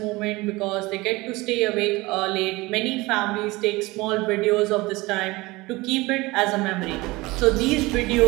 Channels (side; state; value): left; quieter; 21.7 dB